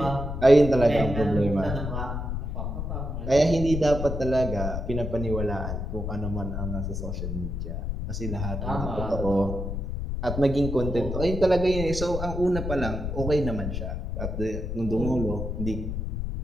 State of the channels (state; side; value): noise; left; rumble, 4 dB below the sound